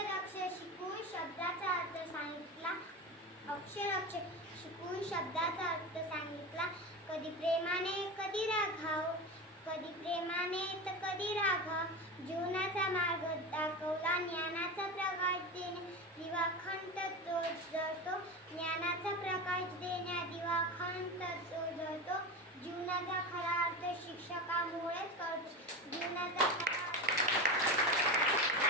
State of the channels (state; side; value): normal; both; correlation 0.24